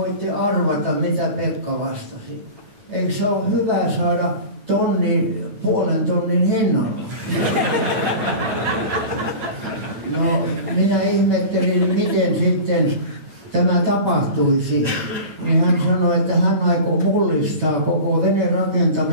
arvata, mitä Pekka vastasi. Eikö se ole hyvä saada puolen tonnin hinnalla. No, minä ihmettelin, miten sitten tämä tapahtuisi. Niin hän sanoi, että hän aikoo mullistaa koko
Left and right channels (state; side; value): late; left; 9.2 ms